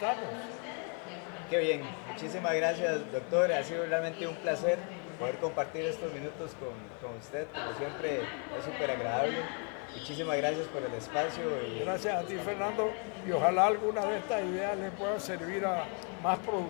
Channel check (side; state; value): right; quieter; 39.6 dB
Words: Qué bien, muchísimas gracias, doctor. Ha sido realmente un placer poder compartir estos minutos con usted. Como siempre, es súper agradable. Muchísimas gracias por el espacio. Gracias a ti, Fernando, y ojalá alguna de estas ideas le puedan servir a más